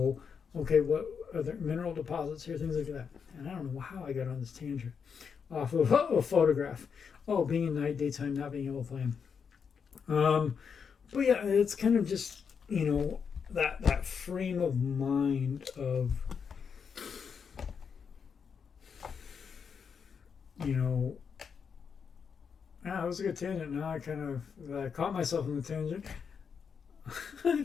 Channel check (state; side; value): quieter; right; 6.4 dB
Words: okay, what are there mineral deposits here, things like that. And I don't know how I got on this tangent off of a photograph. Oh, being in night, daytime, not being able to play. But yeah, it's kind of just, that frame of mind of, that was a good tangent. Now I kind of caught myself in the tangent. I